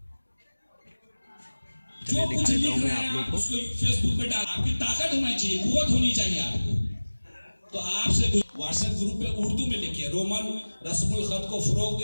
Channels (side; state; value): both; inverted; correlation -1.00